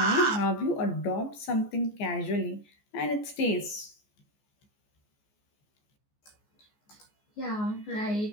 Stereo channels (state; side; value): late; right; 14 ms